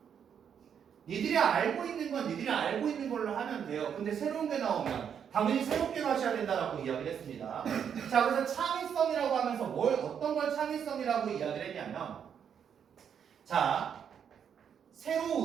니들이 알고 있는 건 니들이 알고 있는 걸로 하면 돼요. 근데 새로운 게 나오면 당연히 새롭게 하셔야 된다라고 이야기를 했습니다. 자, 그래서 창의성이라고 하면서 어떤 걸 창의성이라고 이야기를 했냐면 자,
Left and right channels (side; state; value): left; quieter; 8.0 dB